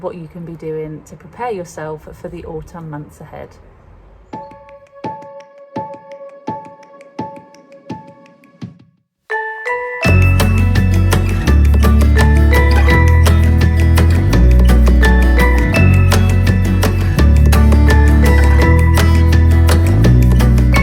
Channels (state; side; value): identical; both; correlation 1.00